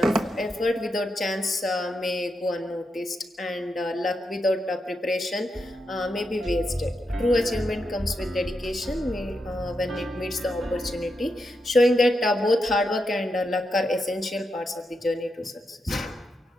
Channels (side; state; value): both; normal; correlation 0.85